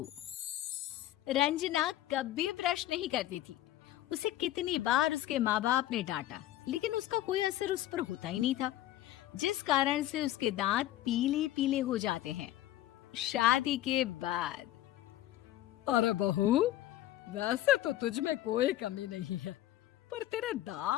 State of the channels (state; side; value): quieter; right; 14.0 dB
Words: रंजना कभी ब्रश नहीं करती थी। उसे कितनी बार उसके माँ बाप ने डांटा, लेकिन उसका कोई असर उस पर होता ही नहीं था, जिस कारण से उसके दांत पीले पीले हो जाते हैं। शादी के बाद अरे बहू, वैसे तो तुझ में कोई कमी नहीं है, पर तेरे